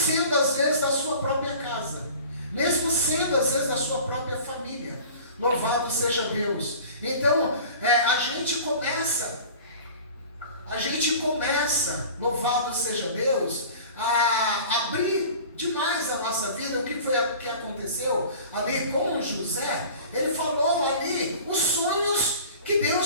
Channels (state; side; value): inverted; both; correlation -0.42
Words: às vezes da sua própria casa. Mesmo sendo às vezes da sua própria família. Louvado seja Deus. Então, a gente começa, louvado seja Deus, a abrir demais a nossa vida. O que foi que aconteceu ali com José? Ele falou ali os sonhos que